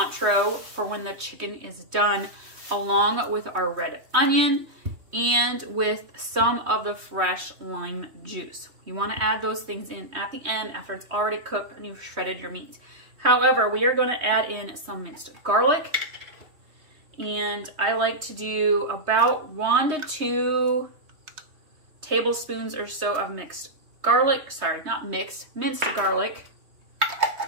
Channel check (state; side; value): late; left; 3.2 ms